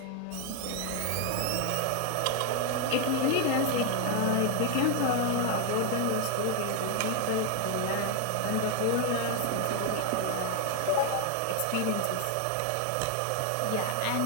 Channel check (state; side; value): different; both; correlation 0.01